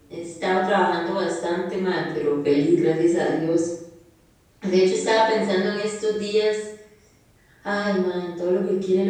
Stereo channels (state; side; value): identical; both; correlation 1.00